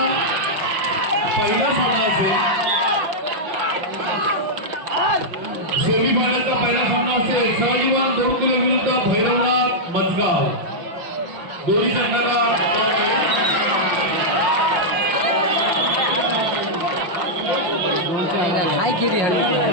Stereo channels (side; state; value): left; late; 5.5 ms